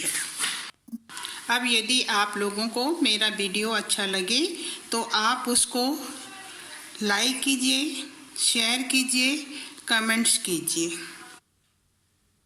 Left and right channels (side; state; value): both; identical; correlation 1.00